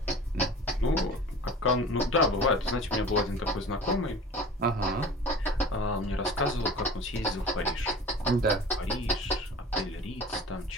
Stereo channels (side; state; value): both; normal; correlation 0.40